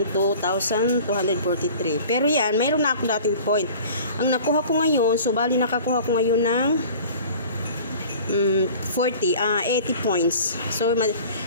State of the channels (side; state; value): both; inverted; correlation -0.44